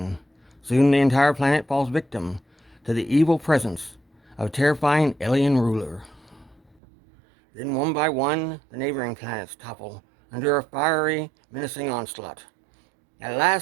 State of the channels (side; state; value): left; drops out; at 6.8 s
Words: Soon the entire planet falls victim to the evil presence of a terrifying alien ruler. Then one by one, the neighboring planets topple under a fiery, menacing onslaught. At